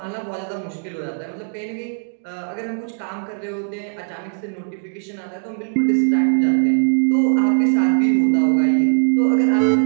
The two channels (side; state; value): left; silent; digital silence